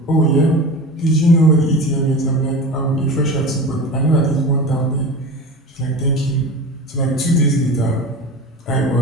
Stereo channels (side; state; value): both; normal; correlation 0.31